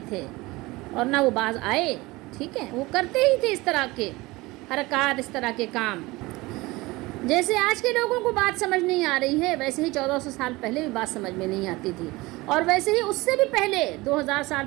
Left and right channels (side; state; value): left; quieter; 21.4 dB